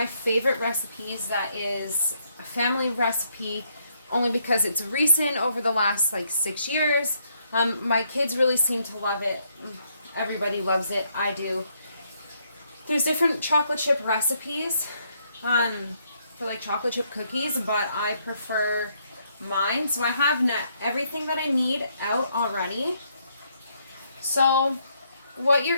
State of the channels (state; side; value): inverted; both; correlation -0.73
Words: favorite recipes that is a family recipe only because it's recent over the last like 6 years. My kids really seem to love it. Everybody loves it. I do. There's different chocolate chip recipes for like chocolate chip cookies, but I prefer mine. So I have everything that I need out already. So what you're